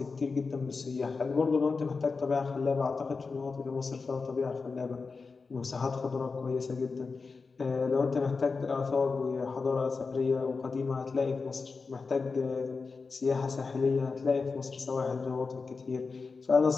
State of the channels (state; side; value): quieter; right; 4.5 dB